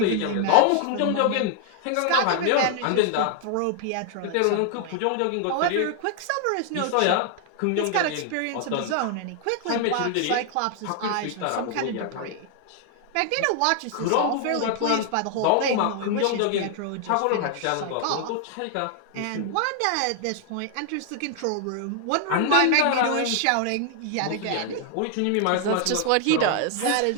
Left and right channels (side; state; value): both; different; correlation 0.00